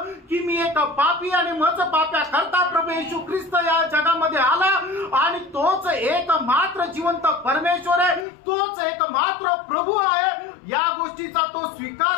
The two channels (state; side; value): drops out; right; at 8.2 s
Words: की मी एक पापी आणि माझं पाप्या करता प्रभू येशू ख्रिस्त या जगामध्ये आला आणि तोच एक मात्र जिवंत परमेश्वर आहे, तोच एक मात्र प्रभू आहे, या गोष्टीचा तो